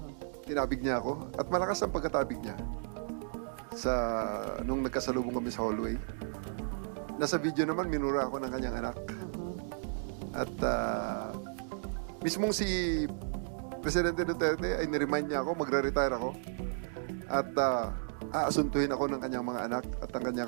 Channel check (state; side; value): silent; left; digital silence